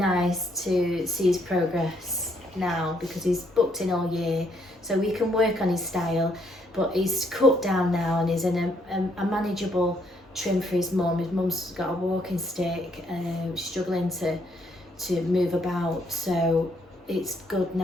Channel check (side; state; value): both; normal; correlation 0.71